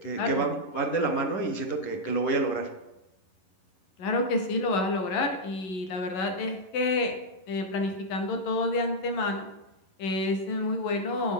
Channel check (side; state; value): right; late; 11 ms